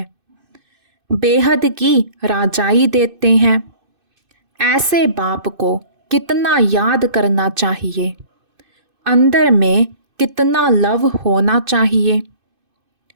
बेहद की राजाई देते हैं। ऐसे बाप को कितना याद करना चाहिए, अंदर में कितना लव होना चाहिए।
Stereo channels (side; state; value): left; late; 2.6 ms